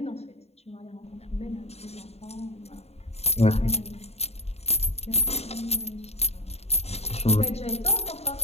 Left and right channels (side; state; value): right; late; 0.30 ms